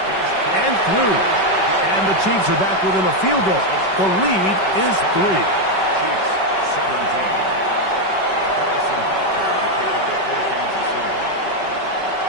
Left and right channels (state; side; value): late; right; 5.3 ms